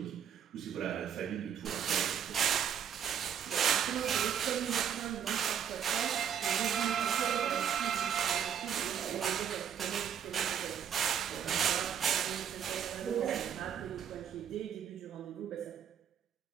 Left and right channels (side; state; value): left; quieter; 8.7 dB